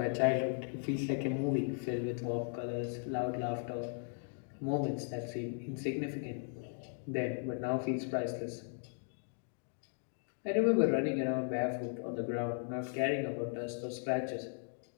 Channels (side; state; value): right; silent; 53 dB below the other